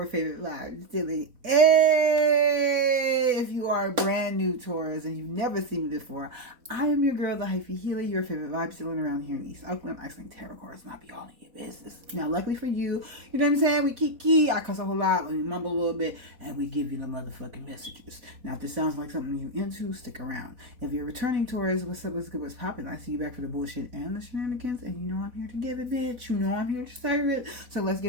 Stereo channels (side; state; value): left; late; 4.1 ms